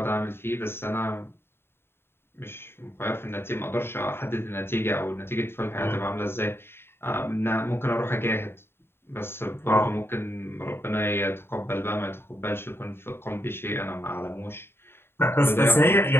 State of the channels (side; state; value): right; late; 0.11 ms